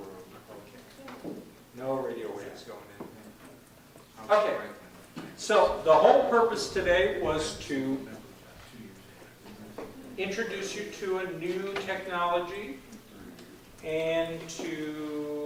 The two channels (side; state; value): both; identical; correlation 1.00